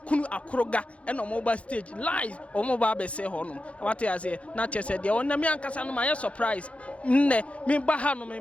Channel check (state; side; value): late; right; 0.063 ms